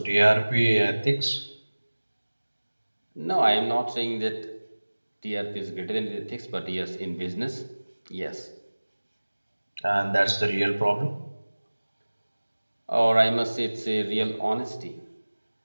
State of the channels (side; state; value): both; inverted; correlation -1.00